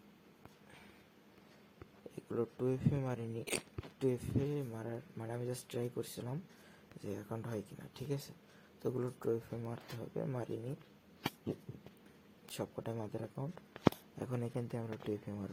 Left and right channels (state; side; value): identical; both; correlation 1.00